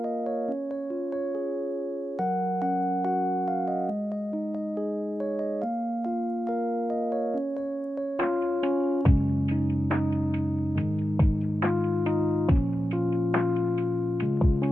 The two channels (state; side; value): normal; both; correlation 0.92